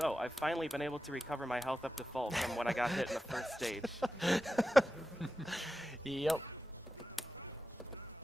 I've finally been able to recover my health up to full from when I got hit in the first stage. Yep.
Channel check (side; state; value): both; normal; correlation 0.92